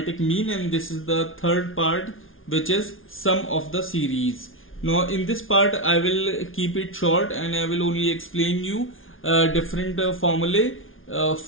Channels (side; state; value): right; late; 0.59 ms